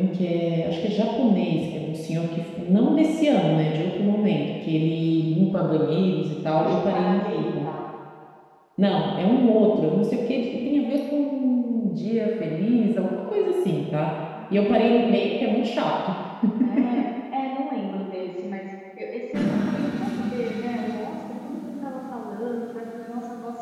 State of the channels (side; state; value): both; identical; correlation 1.00